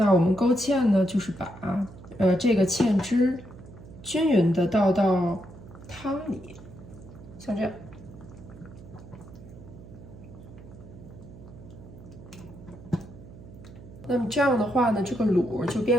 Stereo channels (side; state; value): right; noise; hum, 17 dB below the sound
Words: 我们勾芡呢，就是把这个芡汁均匀的倒到汤里，像这样。那么这样的话呢，这个卤就